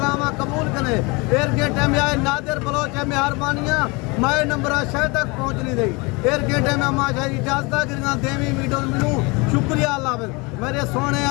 कबूल करे एर गेटे में आए नादिर बलोच है मेहरबानियां मैं नंबर शायद तक पहुंच नहीं रही एर गेटे में माशा इजाजत गिरना देवी वीडियो मिलूं शुक्रिया अल्लाह मेरे सोने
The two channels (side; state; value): right; quieter; 27.0 dB